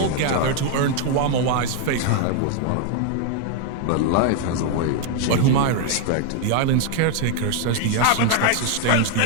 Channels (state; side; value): different; both; correlation 0.00